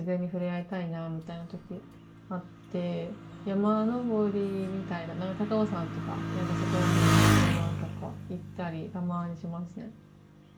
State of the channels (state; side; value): identical; both; correlation 1.00